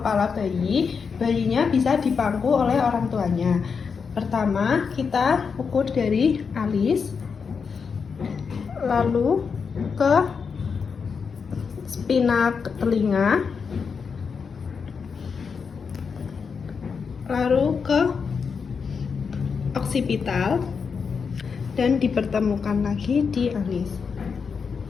bayi. Bayinya bisa dipangku oleh orang tuanya. Pertama, kita ukur dari alis, lalu ke spina telinga, lalu ke oksipital, dan dipertemukan lagi di alis.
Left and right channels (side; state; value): right; quieter; 5.8 dB